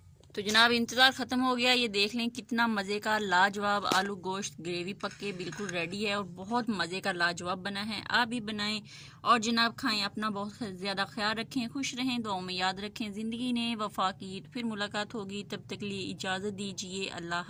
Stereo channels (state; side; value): identical; both; correlation 1.00